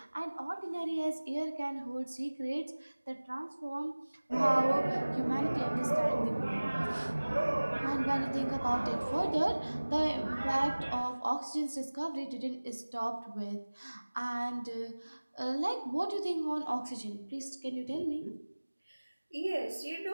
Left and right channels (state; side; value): inverted; both; correlation -1.00